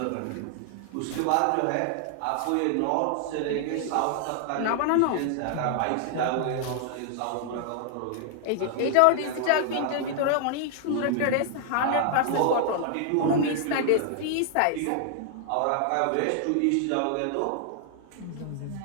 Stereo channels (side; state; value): both; different; correlation 0.00